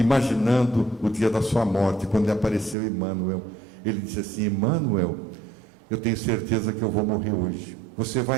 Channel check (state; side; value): drops out; left; at 2.8 s